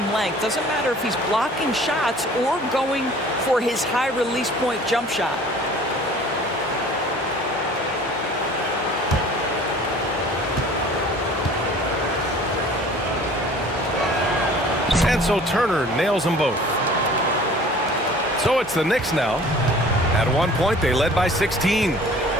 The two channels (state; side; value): normal; both; correlation 0.48